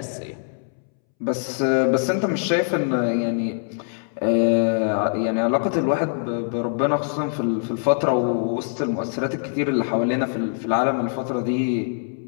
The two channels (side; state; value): right; silent; 63 dB below the other